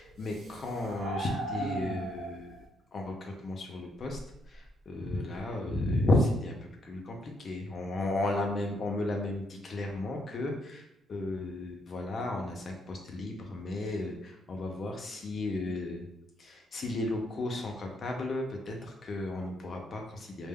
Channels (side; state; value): both; normal; correlation 0.75